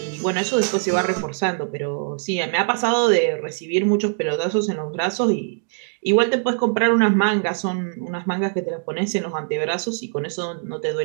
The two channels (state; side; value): silent; left; digital silence